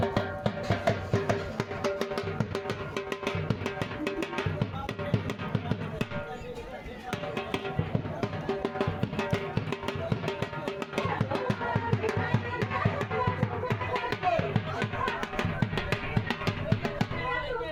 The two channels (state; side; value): identical; both; correlation 1.00